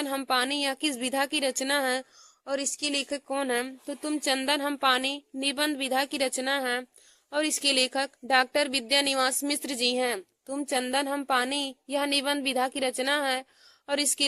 हम पानी यह किस विधा की रचना है और इसके लेखक कौन है? तो तुम चंदन हम पानी निबंध विधा की रचना है और इसके लेखक डॉक्टर विद्यानिवास मिश्र जी हैं। तुम चंदन हम पानी यह निबंध विधा की रचना है और इसके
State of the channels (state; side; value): identical; both; correlation 1.00